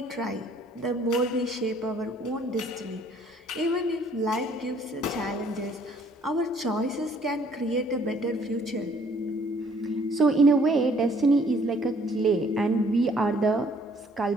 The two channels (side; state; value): both; normal; correlation 0.61